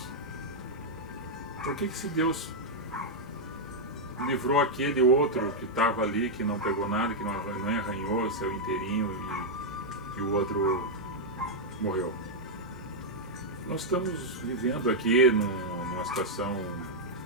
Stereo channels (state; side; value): normal; both; correlation -0.03